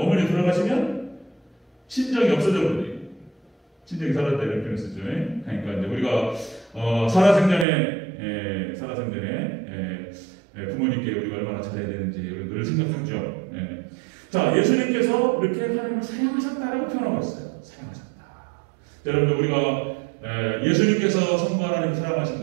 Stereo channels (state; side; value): drops out; left; at 7.7 s